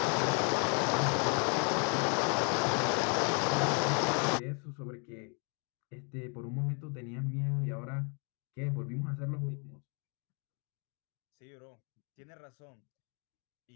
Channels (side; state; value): right; quieter; 36.9 dB